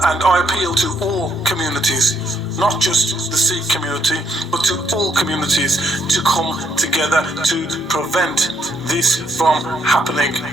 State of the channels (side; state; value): both; normal; correlation 0.72